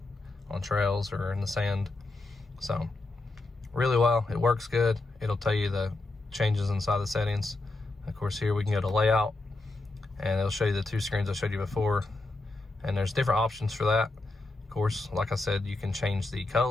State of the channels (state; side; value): quieter; right; 3.0 dB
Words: on trails or in the sand. So really well, it works good. It'll tell you the changes inside the settings. Of course, here we can go to layout and it'll show you the 2 screens I showed you before, and there's different options for that. Of course, like I said, you can change the